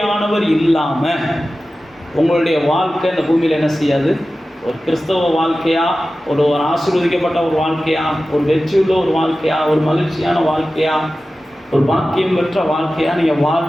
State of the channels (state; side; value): normal; both; correlation 0.95